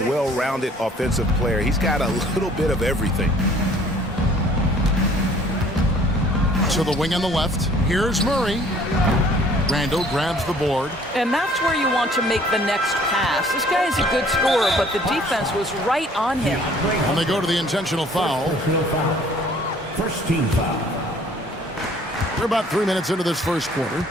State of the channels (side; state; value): both; normal; correlation 0.56